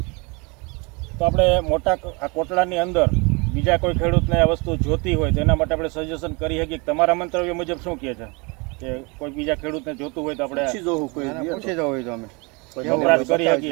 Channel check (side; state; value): left; quieter; 29.1 dB